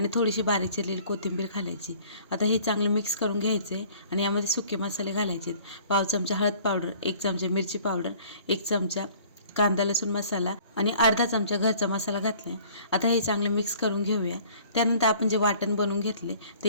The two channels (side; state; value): both; inverted; correlation -0.53